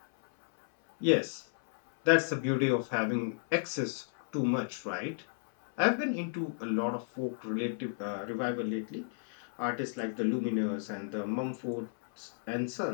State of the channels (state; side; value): silent; right; 56 dB below the other